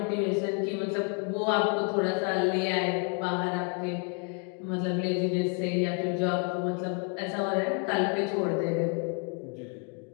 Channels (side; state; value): right; quieter; 37.7 dB